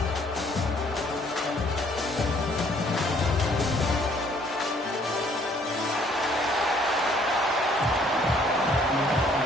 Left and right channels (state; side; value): normal; both; correlation 0.62